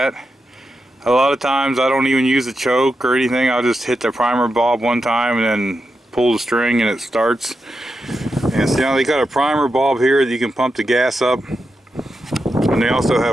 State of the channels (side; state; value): both; normal; correlation 0.87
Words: A lot of times I don't even use a choke or anything. I'll just hit the primer bulb one time and then pull the string and it starts. And see, now they got a primer bulb here that you can pump the gas up. And they also